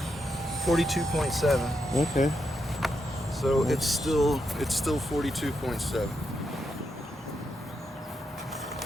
42.7. Okay. So it's still 42.7.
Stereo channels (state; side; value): normal; both; correlation 0.83